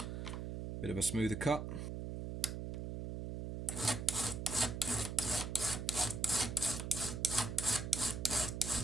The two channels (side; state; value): right; noise; hum, 5 dB below the sound